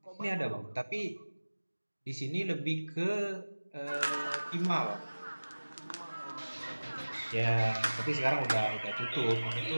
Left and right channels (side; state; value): both; inverted; correlation -1.00